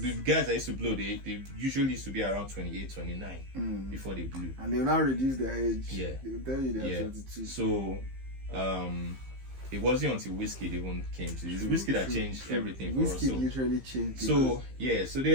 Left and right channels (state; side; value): late; left; 15 ms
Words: guys that used to blow, they usually used to be around 28, 29 before they blew. And they'll now reduce their age. Yeah. They'll tell you they're 32. So it wasn't until Wizkid even came to this. Wizkid that changed everything for us. Wizkid literally changed. So so